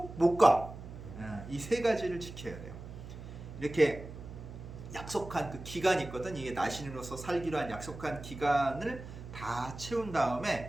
못 가. 이 세 가지를 지켜야 돼요. 이렇게 약속한 그 기간이 있거든. 이게 나신인으로서 살기로 한 약속한 기간을 다 채운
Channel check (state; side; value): noise; right; hum, 13 dB below the sound